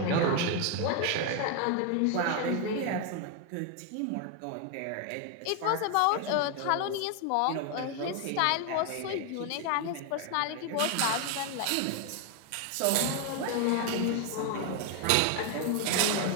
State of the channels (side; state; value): both; different; correlation 0.01